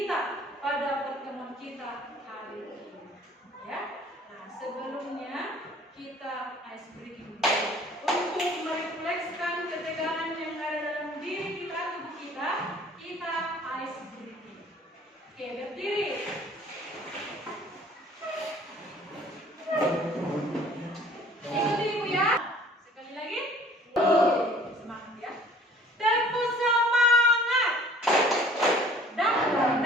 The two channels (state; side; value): normal; both; correlation 0.52